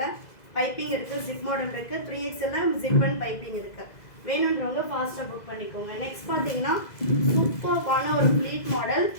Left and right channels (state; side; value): late; right; 2.0 ms